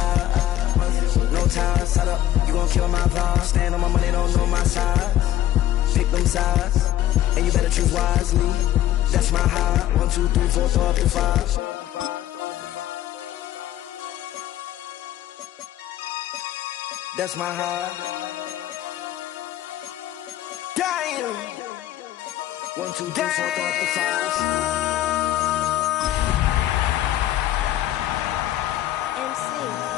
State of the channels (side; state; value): right; quieter; 12.9 dB